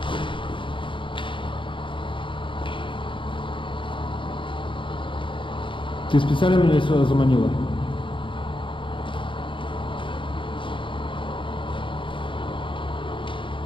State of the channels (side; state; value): right; late; 0.24 ms